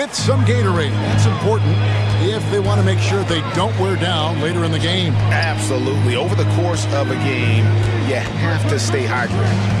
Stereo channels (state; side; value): identical; both; correlation 1.00